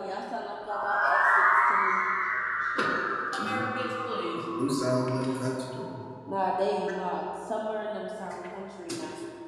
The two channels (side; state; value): both; identical; correlation 1.00